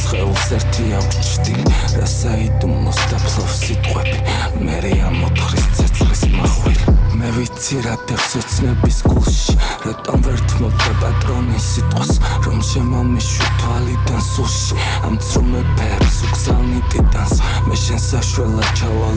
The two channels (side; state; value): both; identical; correlation 1.00